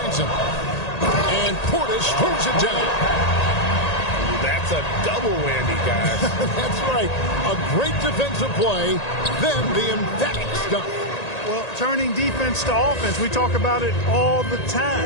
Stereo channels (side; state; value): right; late; 1.8 ms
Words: him. And Portis throws it down. That's a double whammy, guys. That's right. A great defensive play, then the emphatic stuff. Well, turning defense to offense, we talk about it all the